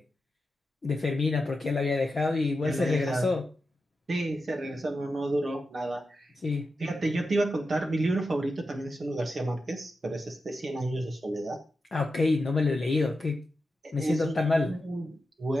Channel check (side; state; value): both; normal; correlation 0.89